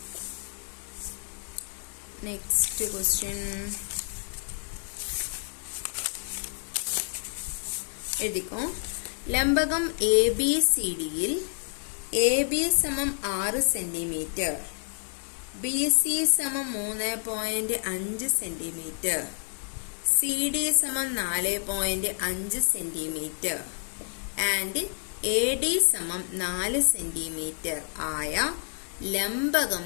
എഴുതിക്കോ. ലംബകം എ ബി സി ഡിയിൽ എ ബി സമം 6 സെന്റിമീറ്റർ, ബി സി സമം 3.5 സെന്റിമീറ്റർ, സി ഡി സമം 4.5 സെന്റിമീറ്റർ ആൻഡ് എ ഡി സമം 4 സെന്റിമീറ്റർ ആയ ലംബകം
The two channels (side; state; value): right; silent; 59 dB below the other